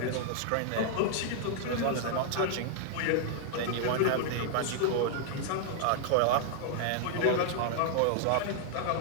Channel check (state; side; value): different; both; correlation 0.00